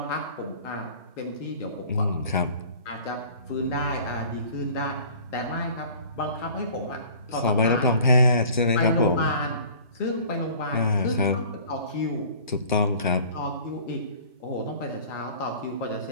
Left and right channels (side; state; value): both; inverted; correlation -0.48